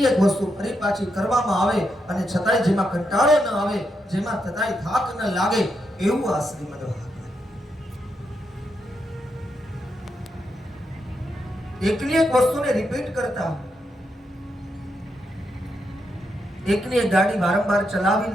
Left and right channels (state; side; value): normal; both; correlation 0.82